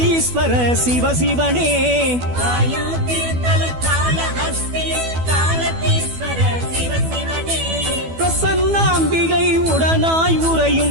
சிவசிவனே வாயு திருத்தலம் காலஹஸ்தியில் காலதீஸ்வர சிவசிவனே பிரசன்னாம்பிகை உடனாய்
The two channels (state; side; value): late; left; 12 ms